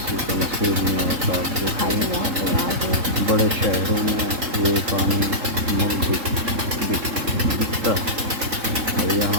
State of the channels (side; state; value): left; late; 3.8 ms